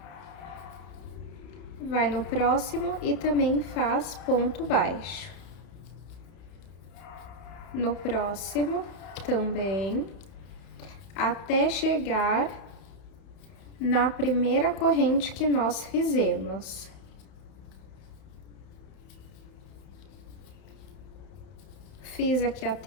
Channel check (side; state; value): right; late; 31 ms